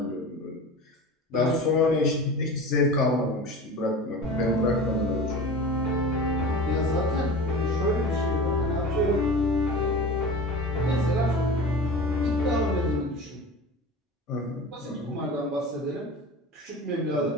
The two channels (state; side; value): normal; both; correlation 0.34